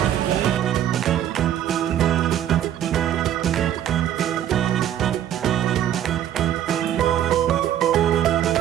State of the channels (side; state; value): left; quieter; 11.1 dB